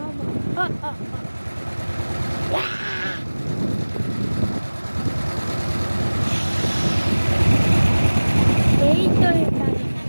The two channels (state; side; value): inverted; both; correlation -1.00